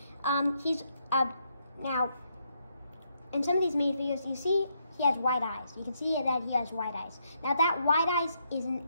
He's now in some of these minifigures you see he has white eyes. You can see that he has white eyes. Now that white eyes isn't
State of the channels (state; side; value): inverted; both; correlation -0.77